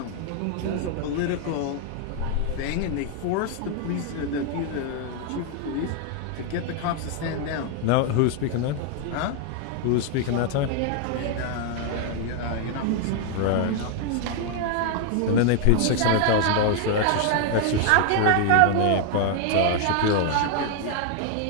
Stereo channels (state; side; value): different; both; correlation 0.00